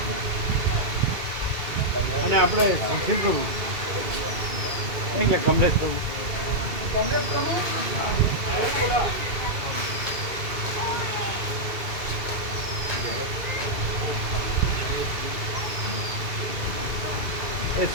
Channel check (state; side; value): late; left; 2.2 ms